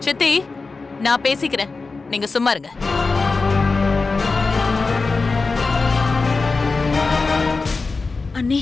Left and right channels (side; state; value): right; quieter; 4.0 dB